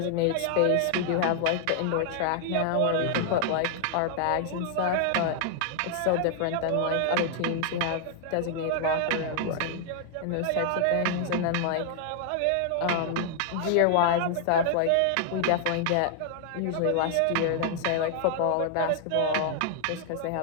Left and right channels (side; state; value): both; different; correlation 0.00